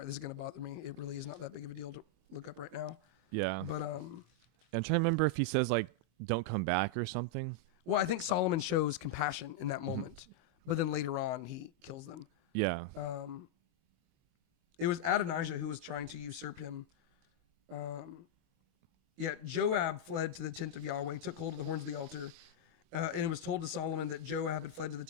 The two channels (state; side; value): late; left; 25 ms